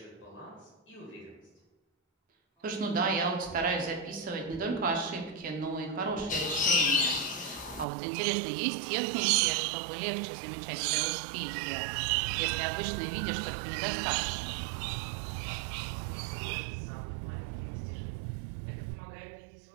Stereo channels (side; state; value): left; drops out; at 7.9 s